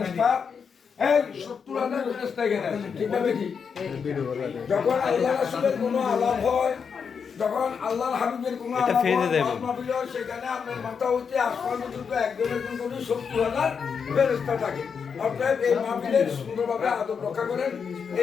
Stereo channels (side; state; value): right; quieter; 6.3 dB